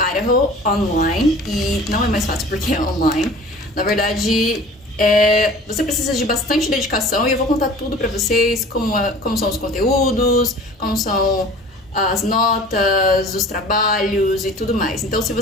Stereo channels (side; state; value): both; normal; correlation 0.44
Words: online, e não é mais fácil porque é online. Na verdade, você precisa de bastante dedicação e eu vou contar tudo pra vocês, como são os conteúdos, como são as notas, os trabalhos e tudo mais. Então, se